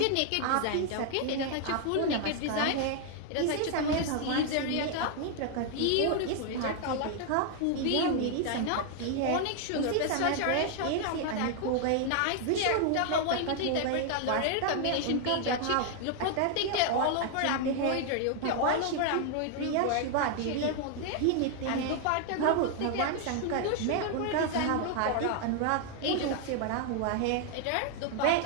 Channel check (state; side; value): different; both; correlation 0.00